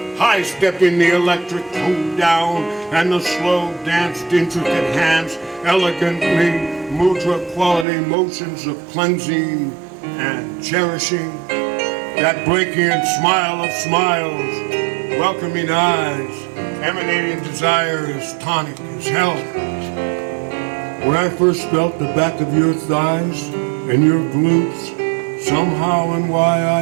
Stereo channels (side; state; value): left; drops out; at 7.9 s